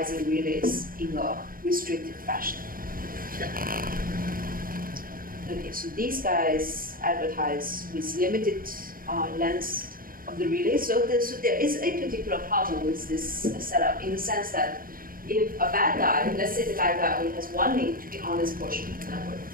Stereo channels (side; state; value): left; late; 0.41 ms